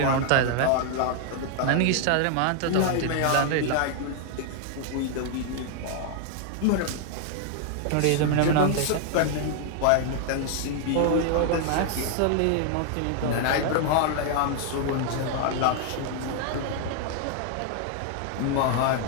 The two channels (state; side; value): different; both; correlation 0.00